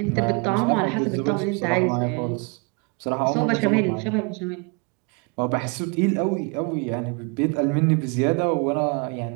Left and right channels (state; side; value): quieter; left; 33.4 dB